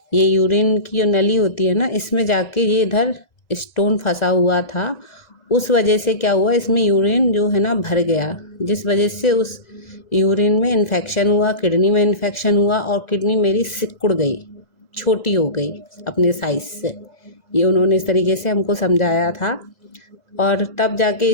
ये यूरिन की जो नली होती है ना, इसमें जाके ये इधर स्टोन फंसा हुआ था। उस वजह से क्या हुआ, इसमें यूरिन जो है ना भर गया, जिस वजह से उस यूरिन में इन्फेक्शन हुआ, किडनी में इन्फेक्शन हुआ और किडनी मेरी सिकुड़ गई, छोटी हो गई अपने साइज़ से। ये उन्होंने इस तरीके से हमको समझाया था। और तब जाके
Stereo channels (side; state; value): right; late; 2.0 ms